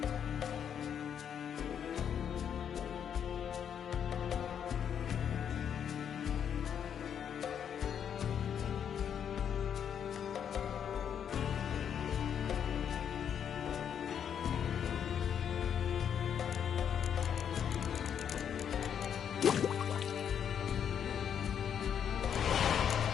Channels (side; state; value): right; quieter; 8.4 dB